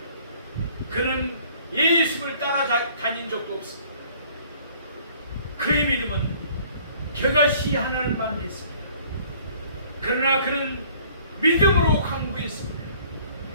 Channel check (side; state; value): both; inverted; correlation -0.55